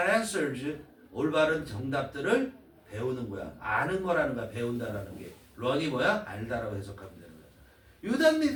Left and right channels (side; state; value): both; identical; correlation 1.00